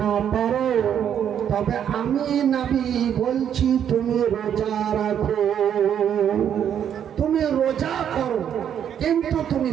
পারো, তবে আমি নবী বলছি তুমি রোজা রাখো, তুমি রোজা করো, কিন্তু তুমি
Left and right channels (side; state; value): left; quieter; 9.1 dB